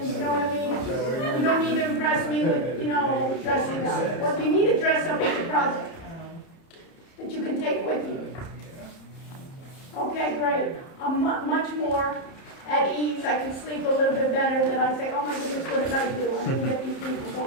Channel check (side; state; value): right; late; 30 ms